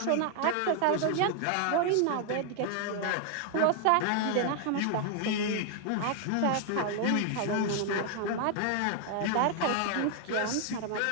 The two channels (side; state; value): both; different; correlation 0.00